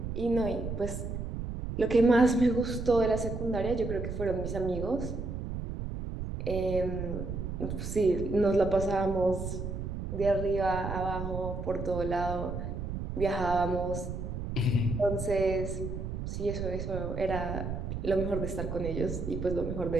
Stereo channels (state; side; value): noise; right; rumble, 5 dB below the sound